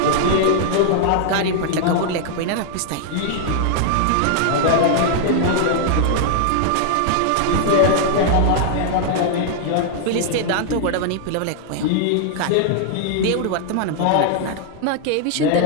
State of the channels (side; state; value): both; different; correlation -0.01